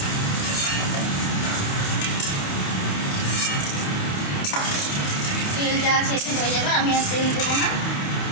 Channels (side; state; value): right; late; 28 ms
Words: তেল যা আছে এতে হয়ে যাবে, আমি আর তেল দেবো না।